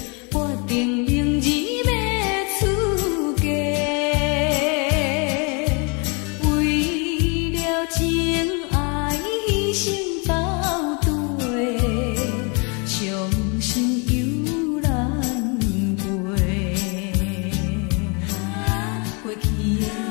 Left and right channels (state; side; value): quieter; right; 33.6 dB